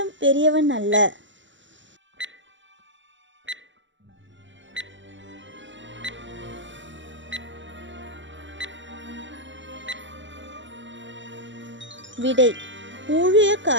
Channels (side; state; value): left; late; 0.54 ms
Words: பெரியவன் அல்ல? விடை